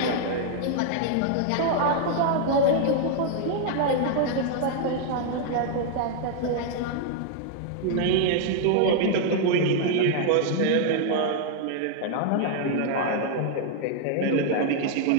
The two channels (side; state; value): both; different; correlation 0.00